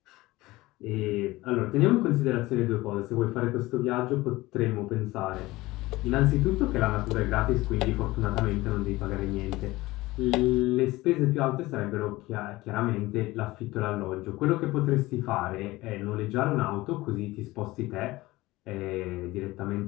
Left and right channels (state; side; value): quieter; right; 19.2 dB